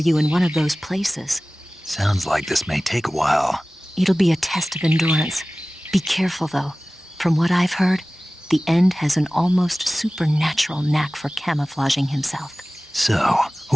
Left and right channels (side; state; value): both; normal; correlation 0.98